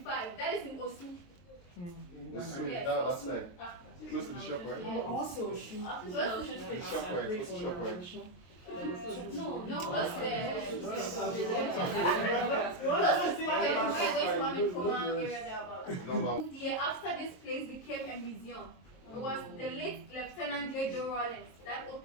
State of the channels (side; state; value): right; late; 22 ms